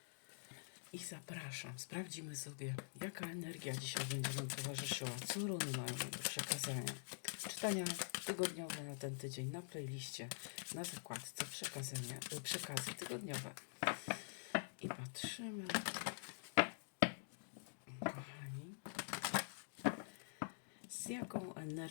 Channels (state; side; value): silent; right; digital silence